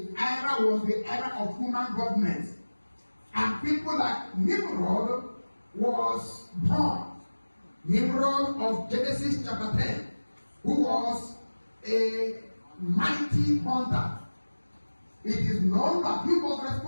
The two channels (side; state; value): both; inverted; correlation -1.00